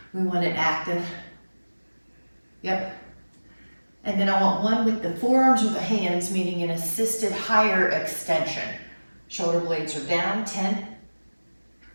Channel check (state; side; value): inverted; both; correlation -1.00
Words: we want it active. Yep. And then I want one with the forearms or the hands, meaning an assisted higher extension. Shoulder blades are down. 10.